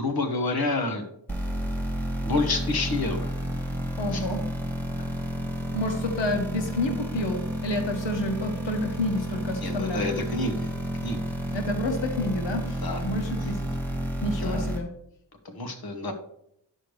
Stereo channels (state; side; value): normal; both; correlation 0.43